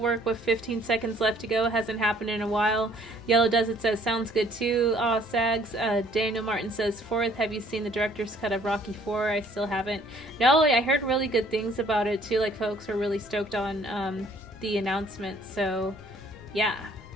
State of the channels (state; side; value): normal; both; correlation 0.59